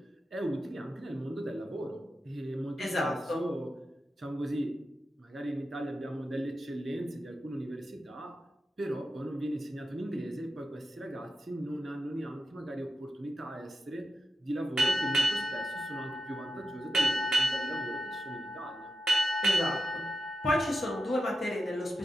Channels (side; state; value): both; normal; correlation 0.90